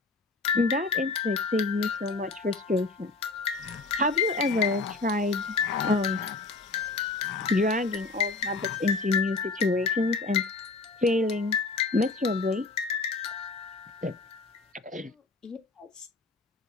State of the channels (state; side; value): quieter; right; 3.6 dB